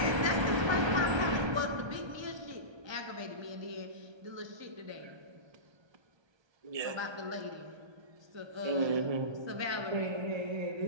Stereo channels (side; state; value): left; late; 1.2 ms